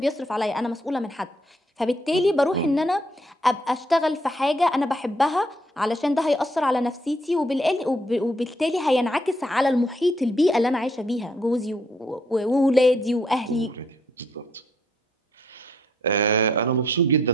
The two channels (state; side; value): normal; both; correlation 0.70